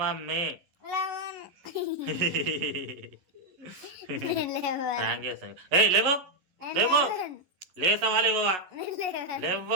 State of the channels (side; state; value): left; late; 11 ms